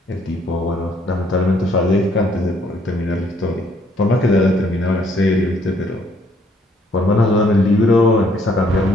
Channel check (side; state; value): both; normal; correlation 0.66